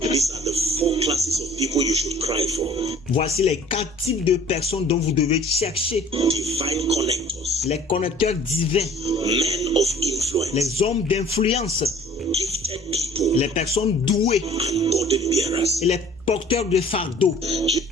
these are the 4 classes of people you should cry for. voici les 4 types de personnes dont vous devez chercher. Divine connectors, Les connecteurs divins, men of influence, les hommes d'influence, gifted people, les personnes douées and burden bearers. et les porteurs de fardeau.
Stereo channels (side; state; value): both; normal; correlation 0.50